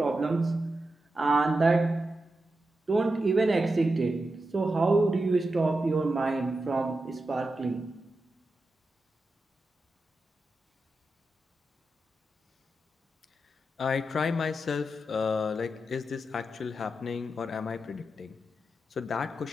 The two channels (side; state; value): both; normal; correlation 0.89